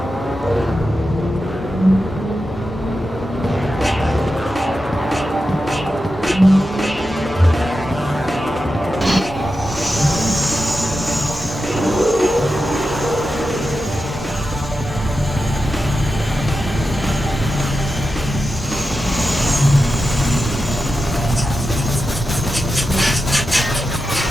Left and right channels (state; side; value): normal; both; correlation 0.90